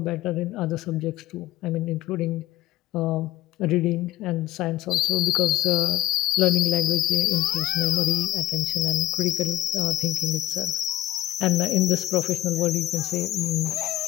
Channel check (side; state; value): right; quieter; 15.3 dB